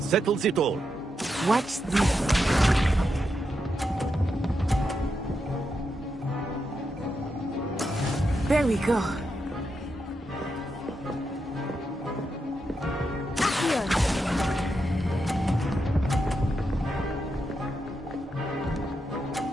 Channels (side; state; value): both; normal; correlation 0.85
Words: settles it all. Watch this. There we go.